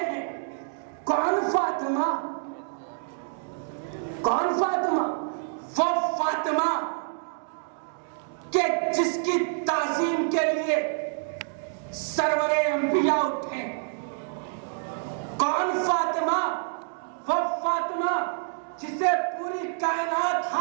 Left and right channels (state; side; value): silent; left; digital silence